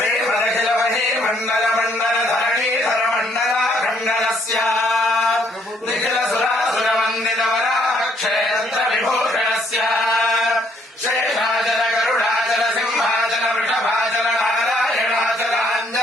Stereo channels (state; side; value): normal; both; correlation 0.68